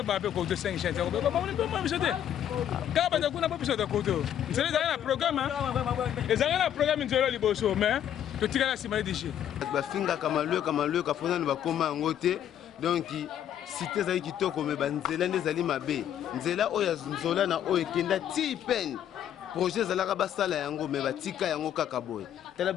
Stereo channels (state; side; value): quieter; right; 10.3 dB